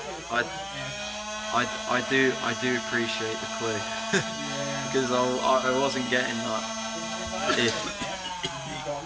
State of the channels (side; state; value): both; identical; correlation 1.00